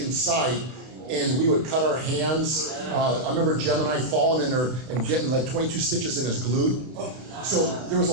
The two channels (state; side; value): late; left; 32 ms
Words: and we would cut our hands. I remember Gemini falling in there and getting like 22 stitches in his glute. So there was a